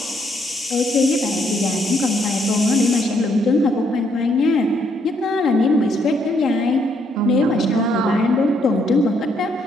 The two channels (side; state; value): both; normal; correlation 0.72